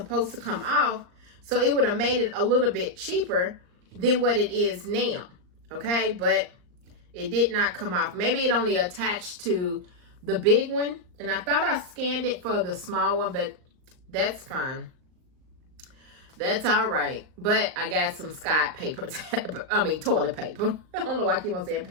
to come off. So it would have made it a little bit cheaper than what it is now. Okay, but it did not come off. Maybe it only attached to the big one. And I thought I scanned it for the small one, but that's fine. That's all right. But I got some Scott paper, toilet paper. I don't know why I keep on saying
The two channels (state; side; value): late; left; 39 ms